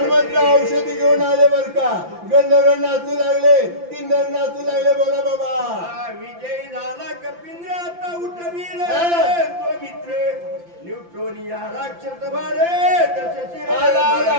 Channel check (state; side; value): late; left; 5.8 ms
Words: औषधी घेऊन आले बर का. गंधर्व नाचू लागले. किन्नर नाचू लागले. बोला बाबा. विजय झाला कपिंद्र आता उठवील तो मित्र. उठून या राक्षस बारे जसे शिरे आला आला